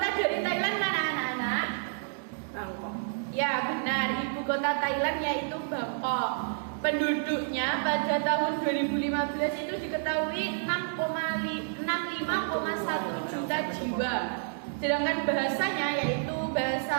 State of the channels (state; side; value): silent; left; digital silence